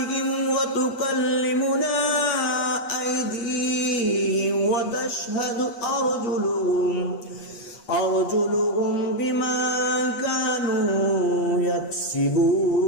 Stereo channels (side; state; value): right; late; 8.4 ms